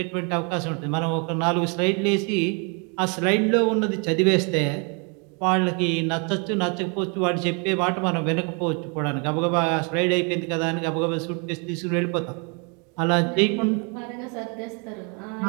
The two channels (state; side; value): quieter; left; 34.8 dB